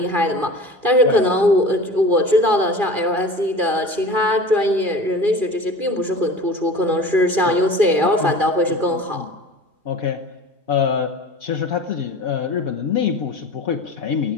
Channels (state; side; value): late; left; 2.3 ms